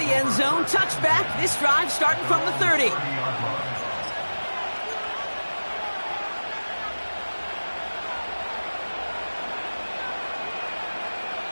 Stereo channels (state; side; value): inverted; both; correlation -1.00